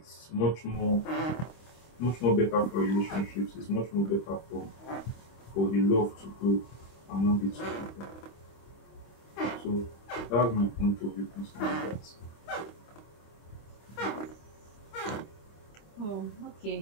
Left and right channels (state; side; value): late; right; 25 ms